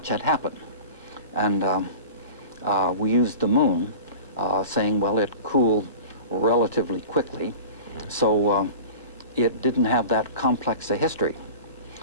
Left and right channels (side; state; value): both; inverted; correlation -0.38